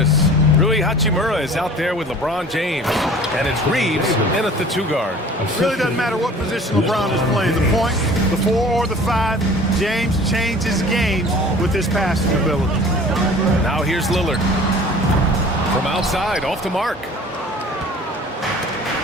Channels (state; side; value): normal; both; correlation 0.46